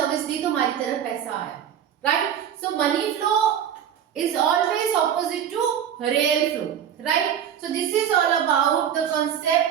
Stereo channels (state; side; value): quieter; left; 9.1 dB